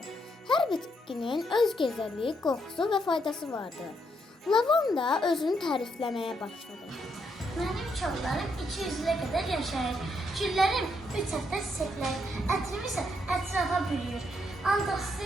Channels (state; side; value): normal; both; correlation 0.77